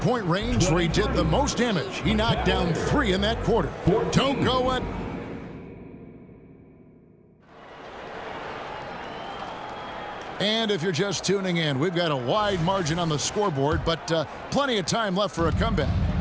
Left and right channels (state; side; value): identical; both; correlation 1.00